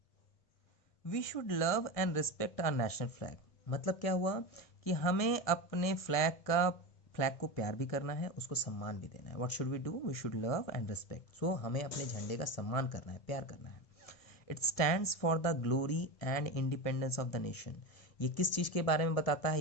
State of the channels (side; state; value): right; late; 1.7 ms